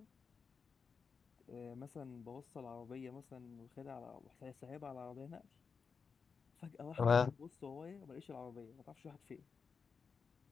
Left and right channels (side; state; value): right; quieter; 5.5 dB